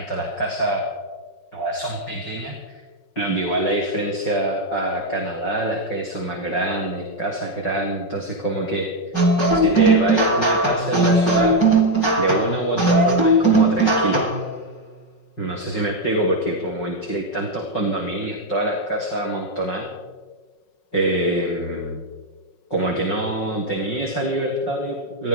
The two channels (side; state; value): right; late; 5.4 ms